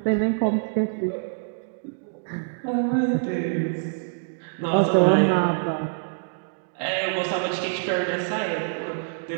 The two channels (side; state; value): left; silent; digital silence